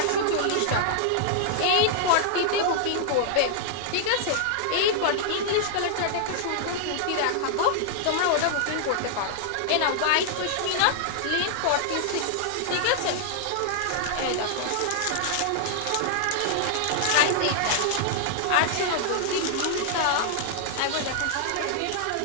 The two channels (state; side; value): different; both; correlation -0.01